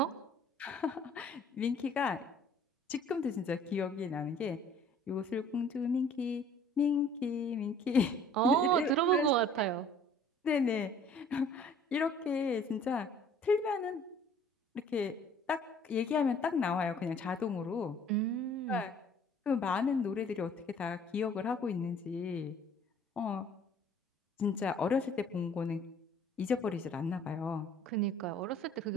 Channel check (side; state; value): both; normal; correlation 0.54